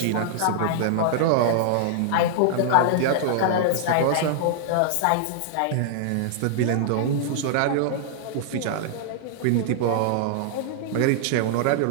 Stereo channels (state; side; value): different; both; correlation -0.01